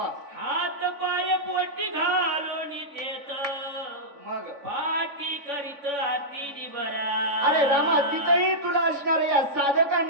हात पाय पोटी घालून देत मग पाठी करीत आरती बरा. अरे रामा तिथंही तुला असणार या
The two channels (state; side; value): late; left; 3.5 ms